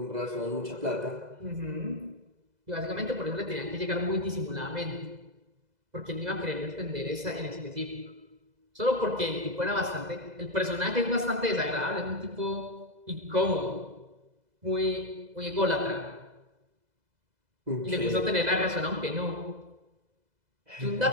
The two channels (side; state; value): left; late; 2.0 ms